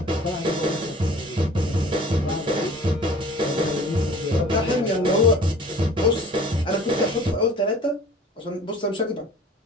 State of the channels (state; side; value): normal; both; correlation 0.47